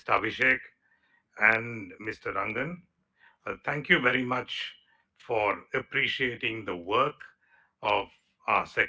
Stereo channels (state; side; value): identical; both; correlation 1.00